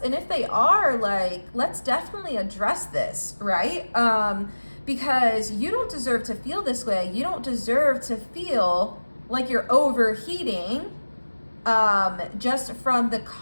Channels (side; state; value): both; inverted; correlation -1.00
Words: if they are, like, let's definitely address this, right? Because you don't deserve to feel this way. You don't deserve to feel like you're overheating just from the